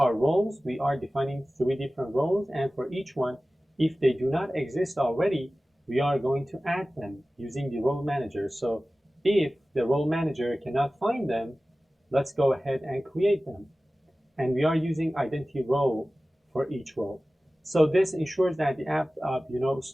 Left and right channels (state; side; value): normal; both; correlation 0.96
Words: roles. We are defining 3 different roles, and for each one, if they do not exist already, we are going to add them using the role manager. So if the role manager cannot find them, let's go ahead and create them. And we are using identity role for each role. So this ensures that the app,